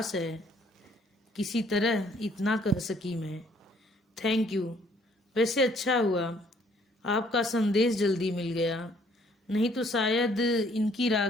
है किसी तरह इतना कह सकी मैं। Thank you. वैसे अच्छा हुआ आपका संदेश जल्दी मिल गया, नहीं तो शायद इनकी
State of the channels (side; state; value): both; normal; correlation 0.63